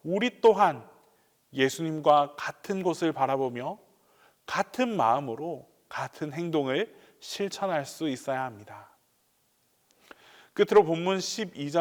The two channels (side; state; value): both; identical; correlation 1.00